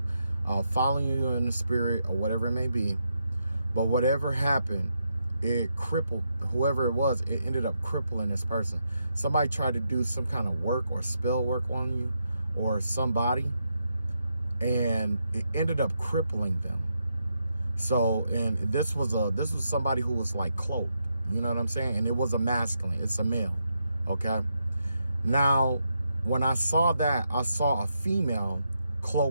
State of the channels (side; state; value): both; inverted; correlation -0.82